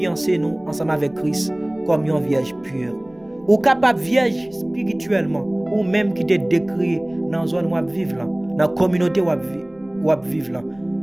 nous ensemble avec Christ comme une vierge pure. Ou capable vierge spirituellement, ou même qui te décrit dans la zone où vous vivez là, dans la communauté où vous vivez là.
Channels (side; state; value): left; noise; rumble, 27 dB below the sound